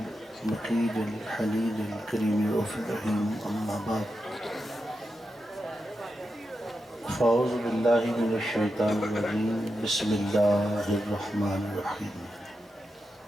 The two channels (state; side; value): normal; both; correlation 0.88